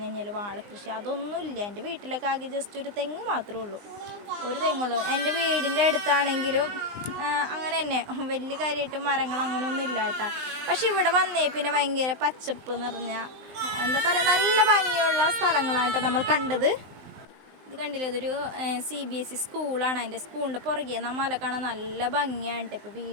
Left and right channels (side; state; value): left; late; 19 ms